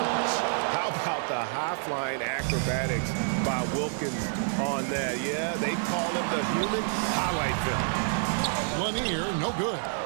How about the high-flying acrobatics by Wilkins on that? Yeah, they call him the human highlight film. Lanier, no good.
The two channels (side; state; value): left; silent; digital silence